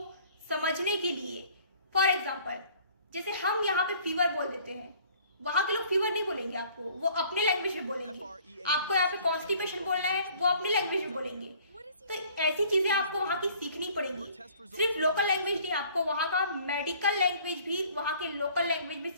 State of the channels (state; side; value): inverted; both; correlation -0.55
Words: समझने के लिए, फॉर एग्जाम्पल जैसे हम यहाँ पे फीवर बोल देते हैं, वहां के लोग फीवर नहीं बोलेंगे आपको, वो अपने लैंग्वेज में बोलेंगे। आपको यहाँ पे कॉन्स्टिपेशन बोलना है, वो अपनी लैंग्वेज में बोलेंगे। तो ऐसी चीजें आपको वहां की सीखनी पड़ेगी। सिर्फ लोकल लैंग्वेज नहीं, आपको वहां का मेडिकल लैंग्वेज भी वहां के लोकल लैंग्वेज में